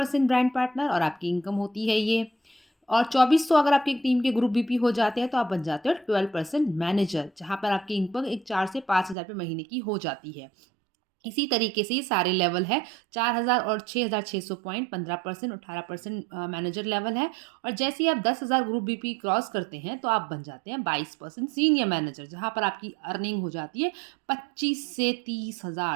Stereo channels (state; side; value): drops out; left; at 9.2 s